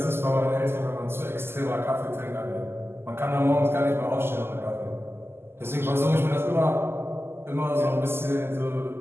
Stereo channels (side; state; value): left; late; 0.12 ms